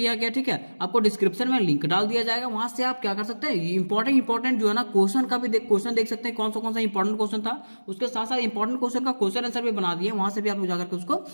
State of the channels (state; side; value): inverted; both; correlation -1.00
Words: गया, ठीक है। आपको डिस्क्रिप्शन में लिंक डाल दिया जाएगा, वहां से आप क्या कर सकते हैं, इंपॉर्टेंट जो है ना क्वेश्चन का भी क्वेश्चन देख सकते हैं, कौन सा इंपॉर्टेंट क्वेश्चन था, उसके साथ साथ इंपॉर्टेंट क्वेश्चन का क्वेश्चन आंसर भी बना दिए, वहां से भी आप लोग जाकर के उसको